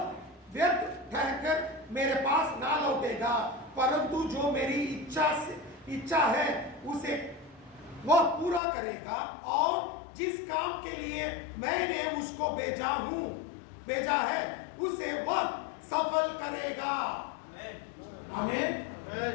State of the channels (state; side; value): drops out; right; at 8.6 s